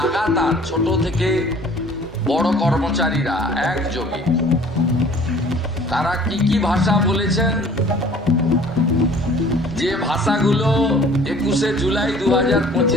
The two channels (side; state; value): both; normal; correlation 0.51